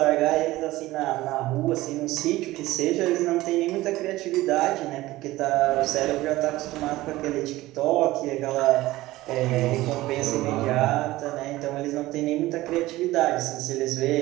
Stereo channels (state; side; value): quieter; left; 17.6 dB